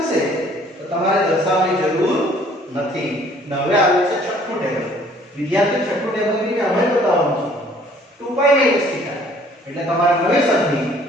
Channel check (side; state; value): both; normal; correlation 0.57